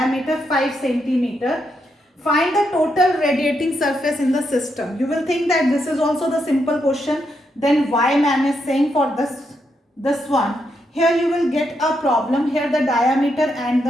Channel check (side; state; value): both; normal; correlation 0.81